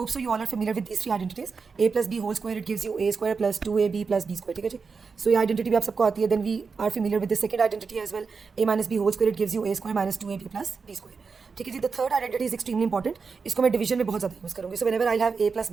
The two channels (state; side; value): quieter; left; 5.1 dB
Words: so you all are familiar with these three identities. A plus B whole square it gives you A square plus 2ab plus B square. ठीक है जी। सो ये identity भी आप सबको आती है। Then we are familiar with the second identity as well, A minus B whole square it gives you A square minus 2ab plus B square. ठीक है जी। The third identity is extremely important, इसको मैं division में बहुत ज़्यादा use करूँगी। So whenever I have A plus